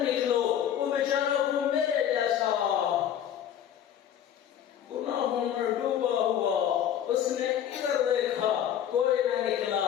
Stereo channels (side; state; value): right; quieter; 9.9 dB